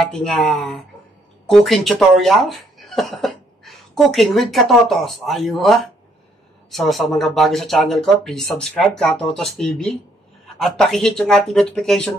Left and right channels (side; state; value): both; normal; correlation 0.69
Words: cooking tutorial. Cooking with Katotos. Ayun. So, sa mga bago sa channel ko, please subscribe, Katotos TV. At pakihit yung ating